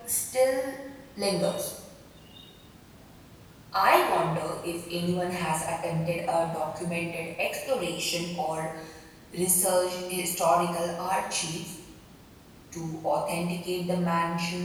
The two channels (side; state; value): both; identical; correlation 1.00